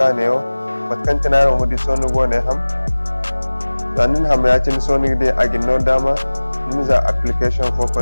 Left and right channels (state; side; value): inverted; both; correlation -1.00